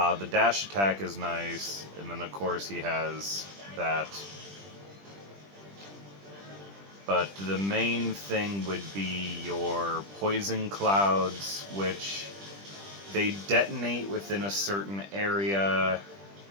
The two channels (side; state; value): left; late; 20 ms